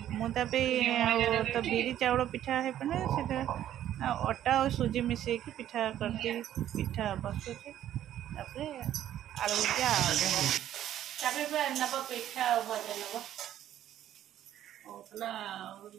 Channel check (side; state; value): left; quieter; 11.7 dB